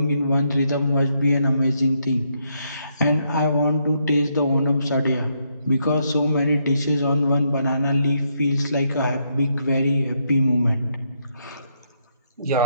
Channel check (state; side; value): inverted; both; correlation -0.77